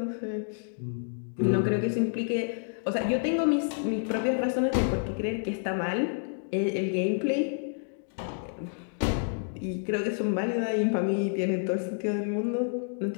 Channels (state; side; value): silent; right; digital silence